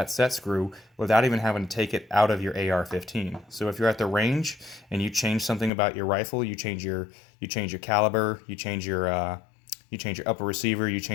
set screw without even having to take it out of your AR-15. So if you're at the range and you change something about your rifle, you change your caliber, you change your upper receiver, you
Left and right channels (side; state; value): right; drops out; at 5.7 s